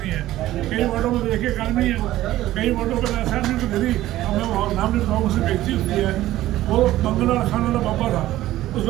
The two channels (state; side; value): quieter; left; 15.0 dB